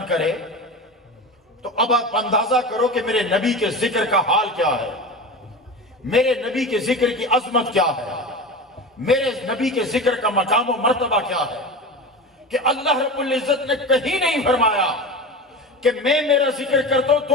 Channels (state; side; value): normal; both; correlation 0.28